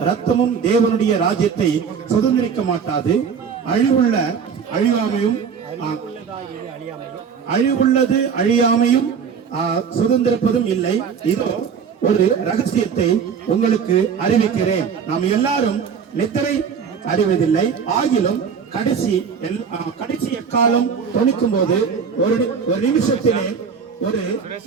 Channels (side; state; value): left; quieter; 6.5 dB